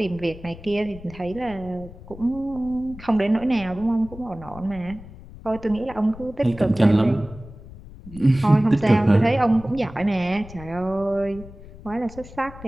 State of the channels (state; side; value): noise; left; rumble, 17 dB below the sound